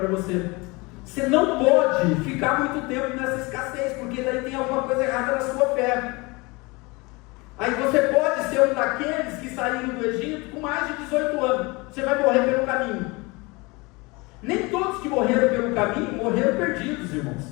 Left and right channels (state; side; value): quieter; right; 25.5 dB